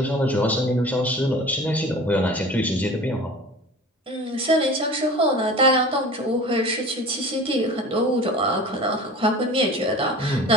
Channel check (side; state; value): both; normal; correlation 0.39